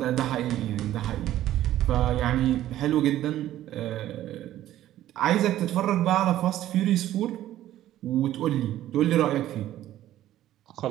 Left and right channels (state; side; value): quieter; left; 13.3 dB